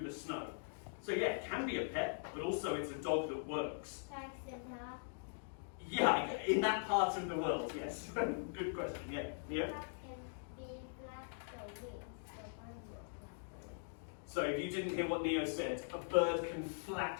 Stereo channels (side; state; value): right; silent; digital silence